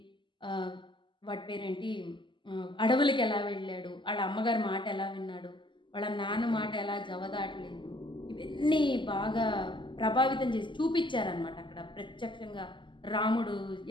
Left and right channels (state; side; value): late; right; 0.24 ms